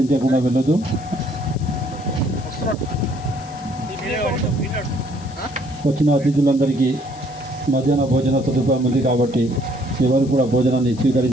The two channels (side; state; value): left; noise; hiss, 22 dB below the sound